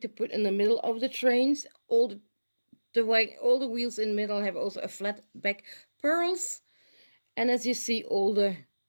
to put in the middle of the trains. All the wheels in the middle have also a flat back pearls. And as you see, all the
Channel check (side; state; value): both; inverted; correlation -1.00